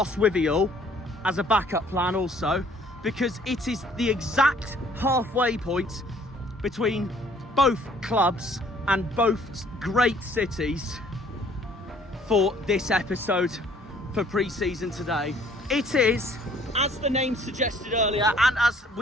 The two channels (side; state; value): both; normal; correlation 0.59